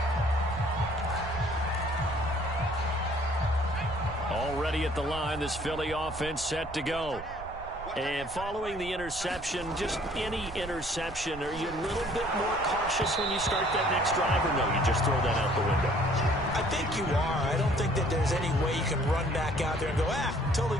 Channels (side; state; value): right; noise; rumble, 14 dB below the sound